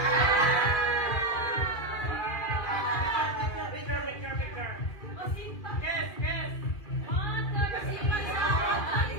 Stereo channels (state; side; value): late; right; 2.3 ms